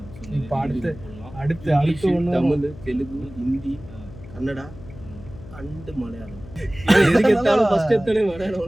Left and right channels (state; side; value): noise; left; hum, 17 dB below the sound